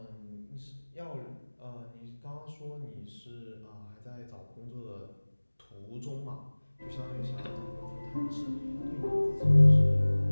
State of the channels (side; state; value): both; inverted; correlation -1.00